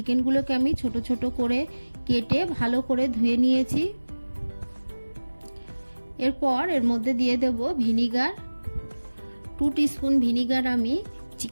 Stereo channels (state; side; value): inverted; both; correlation -1.00